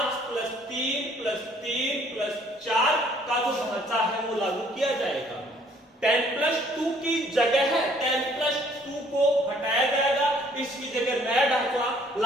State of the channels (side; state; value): both; normal; correlation 0.61